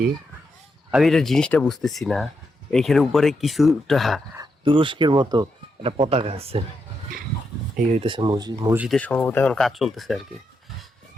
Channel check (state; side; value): normal; both; correlation 0.83